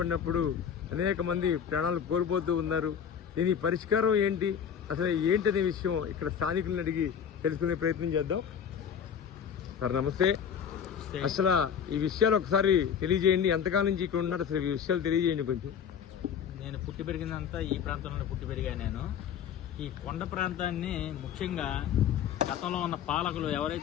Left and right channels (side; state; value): right; quieter; 8.0 dB